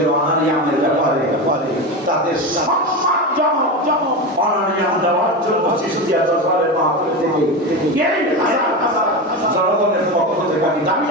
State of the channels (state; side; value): normal; both; correlation 0.21